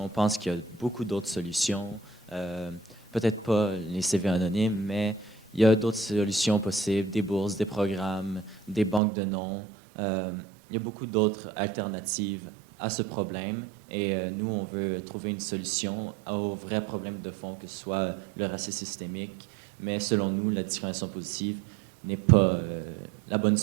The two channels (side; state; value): left; drops out; at 9.0 s